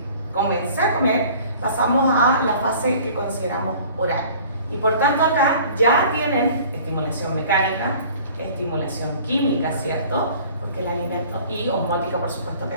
comencé a comer, pasamos a la fase que consideramos oral. Y por tanto acá ya tienen estimulación mecánica, estimulación química, ¿cierto? Porque el alimento, y osmótica por supuesto que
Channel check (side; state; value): both; inverted; correlation -0.49